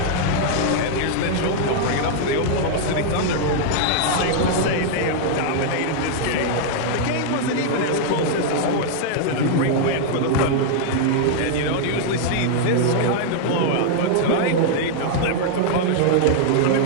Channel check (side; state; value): both; different; correlation -0.01